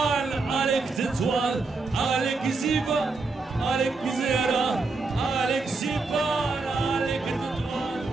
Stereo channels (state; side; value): quieter; left; 3.8 dB